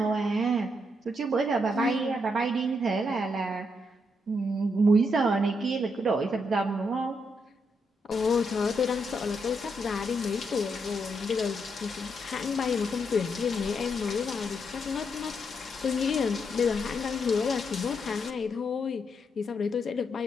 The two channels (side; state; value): both; normal; correlation 0.79